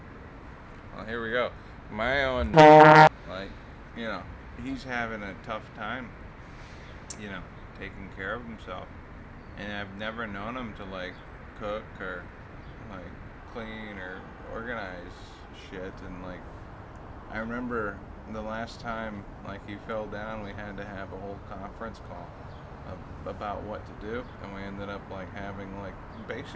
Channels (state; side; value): identical; both; correlation 1.00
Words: here we go. My own, he's having a tough time, taking care of himself. And I've never known him to, cook or, clean or organize shit. And, I remember the last time, he fell down, we had to have a whole conference call about what to do. And we ended up, having,